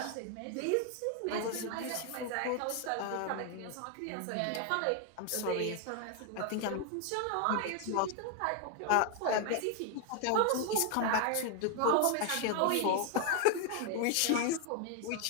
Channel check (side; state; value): both; different; correlation 0.00